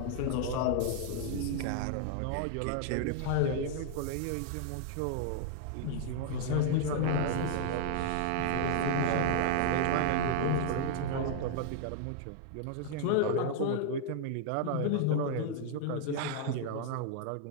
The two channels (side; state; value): both; different; correlation 0.00